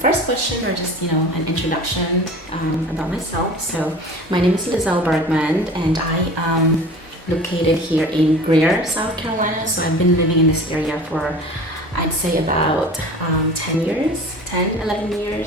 question, or just an introduction about myself. So my name is Lizelle Bergman and I am located here in Greer, South Carolina. So I've been living in this area for, I'd say, about 10 years, 11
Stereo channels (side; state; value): both; normal; correlation 0.40